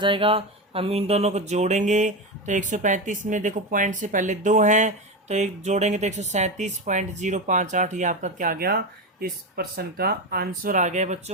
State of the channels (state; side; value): normal; both; correlation 0.17